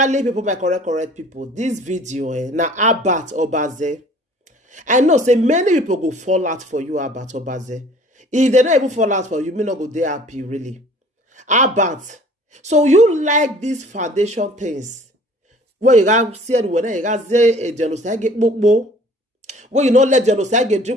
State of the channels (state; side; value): normal; both; correlation 0.51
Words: people, my correct people, this video na Abat Obaze. I know say many people go fall out for you, Abat Obaze. If they don't even fall out for you, may not go there happy really. Abat, so you like these foundation things? Where you got said when you got say a genocide get book. When you not let genocide get